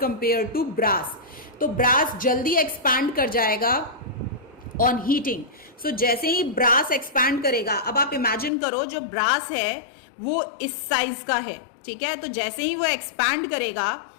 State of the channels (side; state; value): right; drops out; at 8.5 s